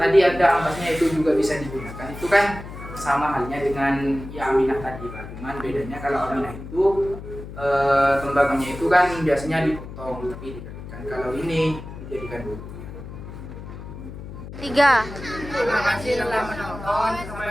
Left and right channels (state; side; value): noise; left; hum, 12 dB below the sound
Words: ada ampasnya itu juga bisa digunakan. Itu kan sama halnya dengan ya aminah tadi Pak. Cuman bedanya kalau aminah itu tembakaunya itu kan biasanya dipotong tapi dikeringkan. Kalau ini dijadikan bubuk. 3. Terima kasih telah menonton.